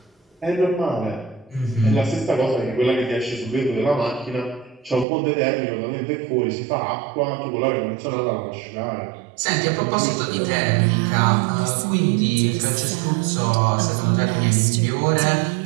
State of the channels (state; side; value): drops out; left; at 5.1 s